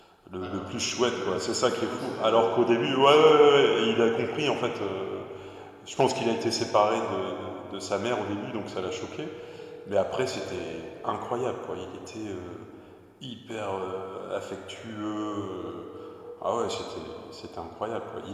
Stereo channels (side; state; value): both; identical; correlation 1.00